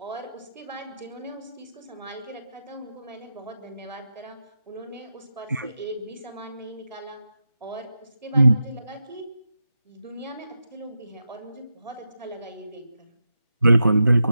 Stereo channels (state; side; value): inverted; both; correlation -0.89